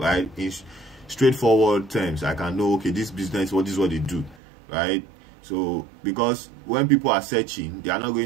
In straightforward terms, I can know, okay, this business, what is what they do, right? So because when people are searching, they are not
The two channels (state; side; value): drops out; left; at 4.4 s